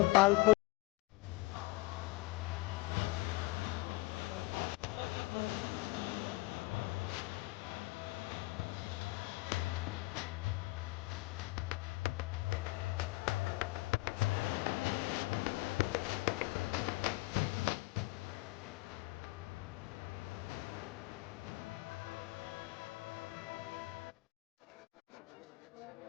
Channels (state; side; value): quieter; right; 22.4 dB